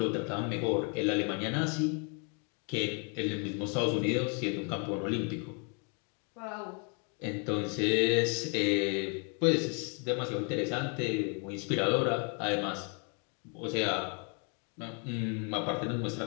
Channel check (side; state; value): right; quieter; 38.3 dB